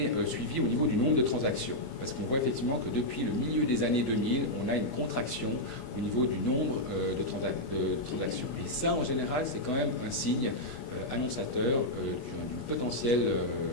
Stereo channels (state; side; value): late; right; 25 ms